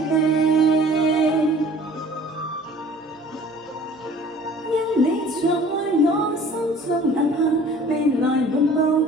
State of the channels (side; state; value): both; normal; correlation 0.50